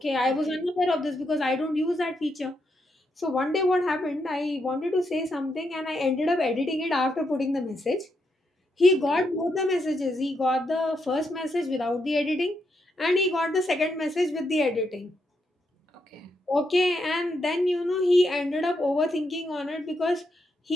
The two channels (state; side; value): normal; both; correlation 0.81